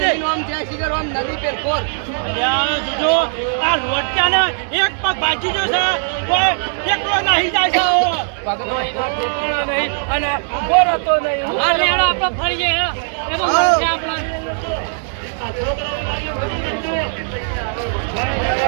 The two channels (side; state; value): left; silent; digital silence